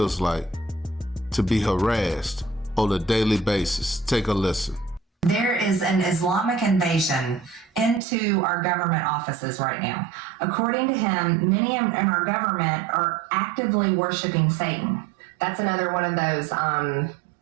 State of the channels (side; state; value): left; drops out; at 8.0 s